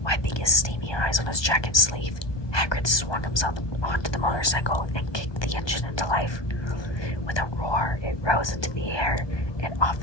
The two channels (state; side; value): late; right; 1.2 ms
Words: Wiping his steamy eyes on his jacket sleeve, Hagrid swung himself onto the motorcycle and kicked the engine into life. With a roar, it rose into the air and off